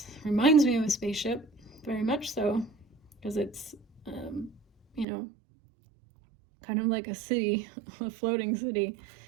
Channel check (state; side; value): drops out; left; at 5.1 s